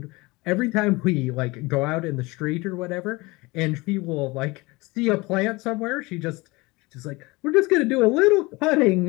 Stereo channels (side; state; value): right; quieter; 23.5 dB